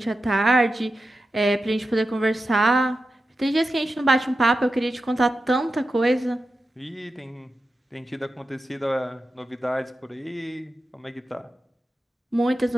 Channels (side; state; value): both; normal; correlation 0.91